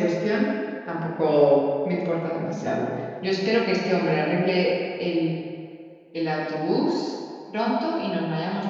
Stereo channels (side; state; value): both; identical; correlation 1.00